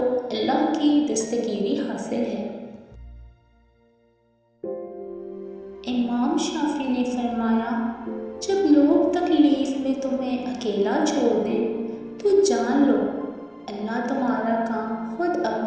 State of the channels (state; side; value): identical; both; correlation 1.00